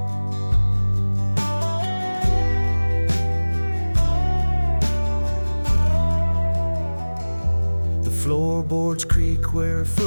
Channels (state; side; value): inverted; both; correlation -1.00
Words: Floorboards creak where her